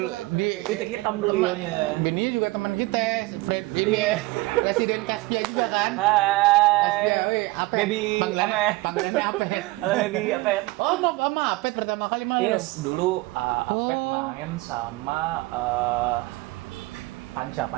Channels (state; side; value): quieter; left; 21.7 dB